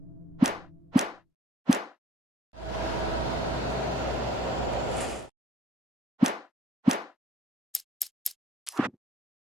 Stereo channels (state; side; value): normal; both; correlation 0.59